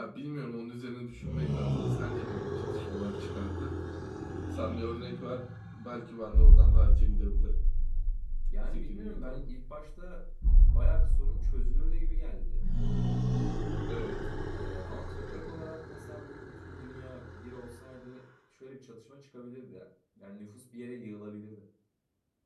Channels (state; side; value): identical; both; correlation 1.00